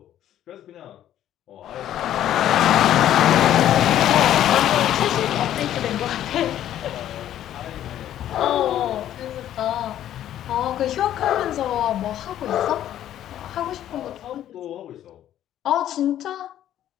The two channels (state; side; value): quieter; right; 11.7 dB